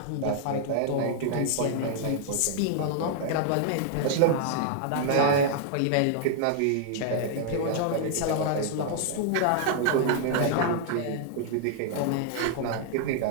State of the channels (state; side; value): different; both; correlation 0.00